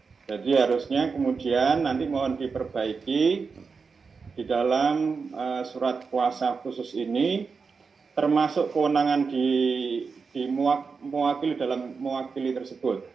Jadi harusnya kemudian nanti mohon diperbaiki di dalam surat kuasa khusus ini, termasuk kewenangan mewakili dalam mewakili tersebut.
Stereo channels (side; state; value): left; quieter; 5.0 dB